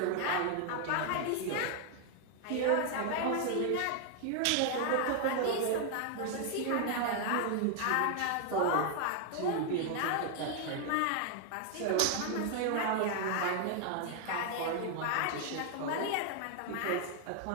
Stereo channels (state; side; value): different; both; correlation 0.00